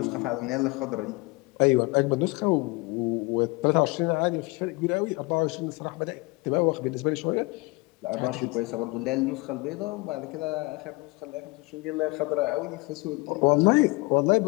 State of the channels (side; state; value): right; quieter; 25.4 dB